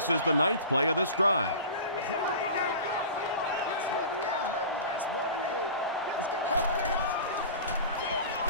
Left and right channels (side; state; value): both; inverted; correlation -0.37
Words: is the 9th play of this drive.